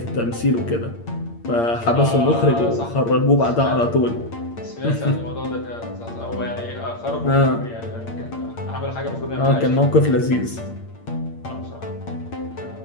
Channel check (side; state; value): right; late; 8.7 ms